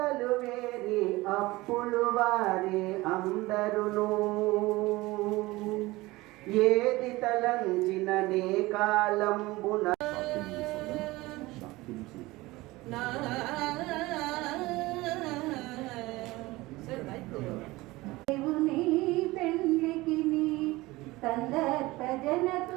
వేరి అప్పులు వారే అందరును. ఏది తలంచిన నే కాలంబున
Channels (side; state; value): left; quieter; 20.2 dB